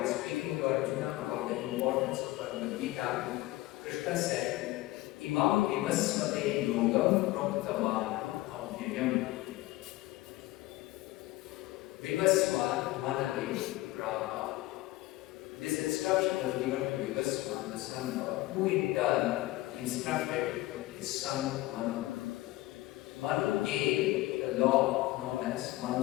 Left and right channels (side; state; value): right; quieter; 18.4 dB